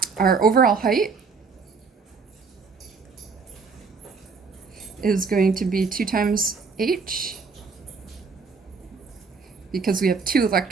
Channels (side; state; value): left; quieter; 4.9 dB